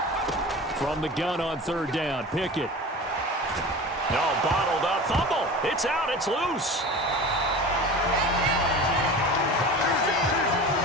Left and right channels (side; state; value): both; normal; correlation 0.35